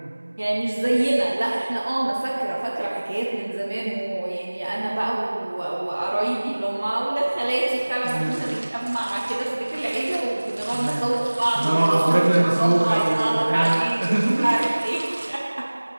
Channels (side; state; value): both; inverted; correlation -1.00